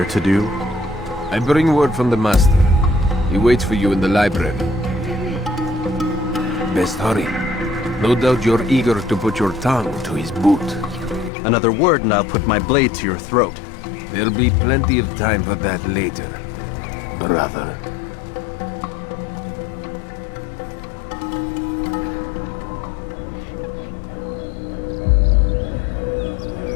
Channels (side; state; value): right; drops out; at 11.3 s